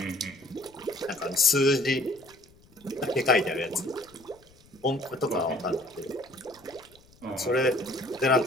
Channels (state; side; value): noise; left; rumble, 28 dB below the sound